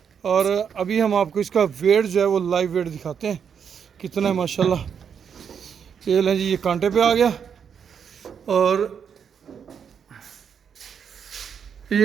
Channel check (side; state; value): left; quieter; 7.3 dB